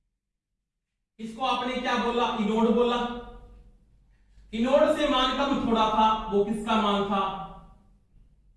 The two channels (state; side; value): identical; both; correlation 1.00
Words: इसको आपने क्या बोला, इनोड बोला। इनोड से मान कम थोड़ा था, वो किसका मान था,